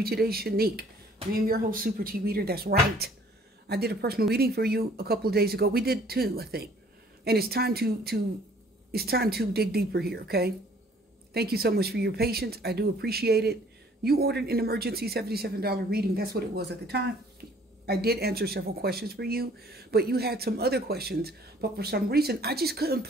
today, Shanique? I am your host, Super T Reader. That's right. I did a personal reading for you a couple of days ago. We did two, I think. And it's time to dig deeper here, okay? Thank you so much for your patience. I do appreciate it. You ordered an emergency $77 reading. That's what it was at the time. I did answer several questions for you, but you had some other questions. But for some reason, I just couldn't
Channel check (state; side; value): normal; both; correlation 0.57